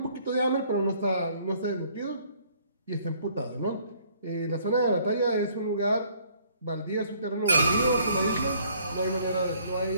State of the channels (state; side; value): inverted; both; correlation -0.61